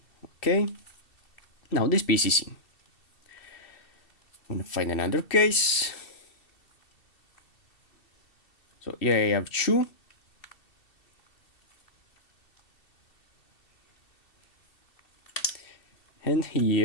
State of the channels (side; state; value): right; late; 2.7 ms